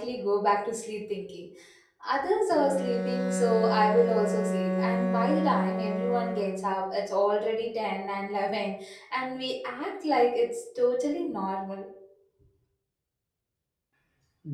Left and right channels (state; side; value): identical; both; correlation 1.00